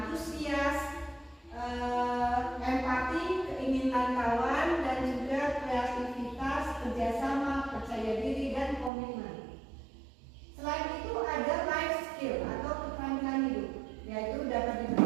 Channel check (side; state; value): left; drops out; at 8.9 s